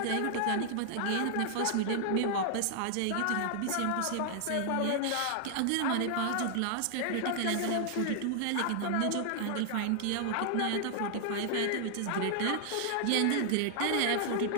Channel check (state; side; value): different; both; correlation -0.01